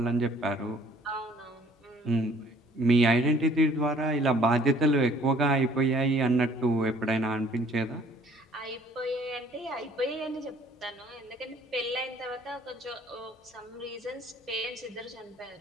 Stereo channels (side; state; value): both; normal; correlation 0.57